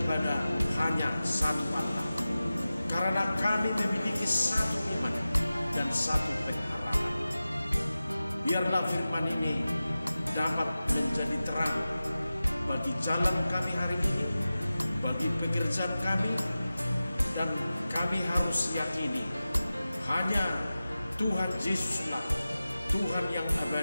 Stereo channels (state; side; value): inverted; both; correlation -0.95